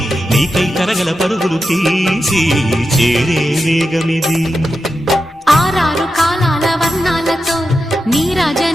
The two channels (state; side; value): normal; both; correlation 0.89